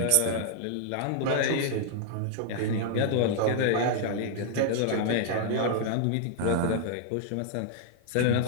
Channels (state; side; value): different; both; correlation -0.01